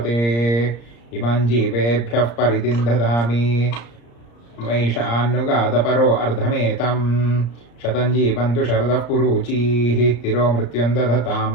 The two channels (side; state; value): right; late; 34 ms